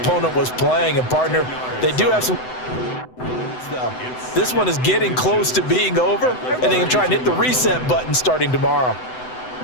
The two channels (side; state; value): right; late; 7.9 ms